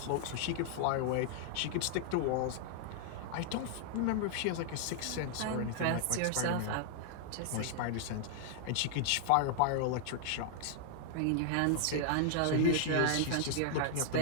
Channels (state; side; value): different; both; correlation -0.01